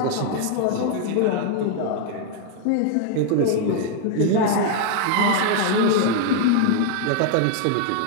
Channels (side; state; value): both; different; correlation 0.00